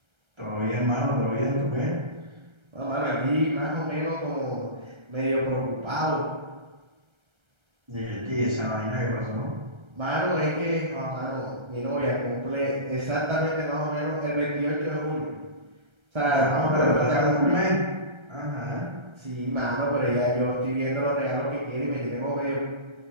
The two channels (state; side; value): late; left; 1.3 ms